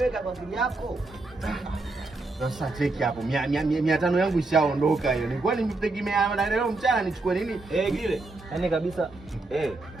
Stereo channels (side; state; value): left; quieter; 3.2 dB